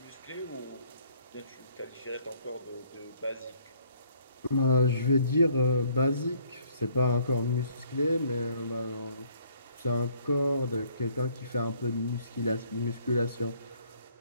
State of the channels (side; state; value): both; inverted; correlation -0.63